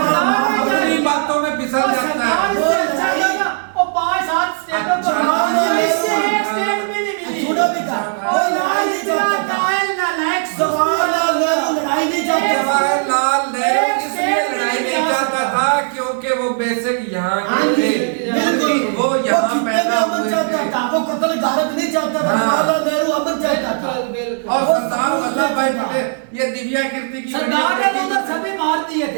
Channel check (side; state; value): left; silent; digital silence